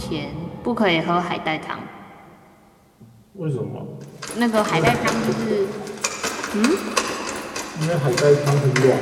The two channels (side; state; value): both; identical; correlation 1.00